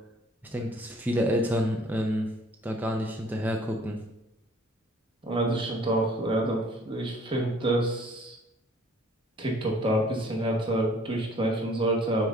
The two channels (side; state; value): both; normal; correlation 0.55